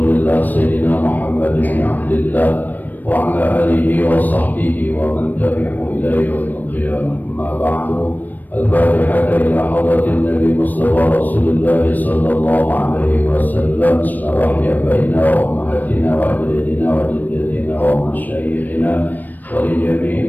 Sayyidina Muhammad bin Abdillah wa ala alihi wa sahbihi wa man tabi'ahu ila yaumil qiyamah. Amma ba'du. Al-Fatihah ila hadratin Nabi Mustafa Rasulullah sallallahu alaihi wasallam. Bismillahirrahmanirrahim. Baina wa ummahatina wa ajdadina wa jaddatina wa masyayikhina wa li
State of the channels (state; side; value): late; right; 0.086 ms